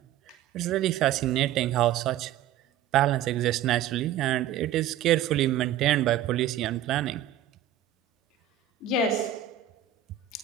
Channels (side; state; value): left; quieter; 10.9 dB